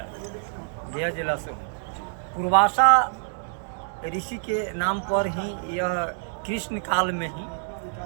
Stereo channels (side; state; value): left; silent; digital silence